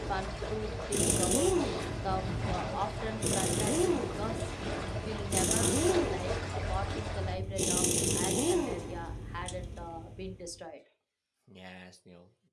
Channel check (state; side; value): identical; both; correlation 1.00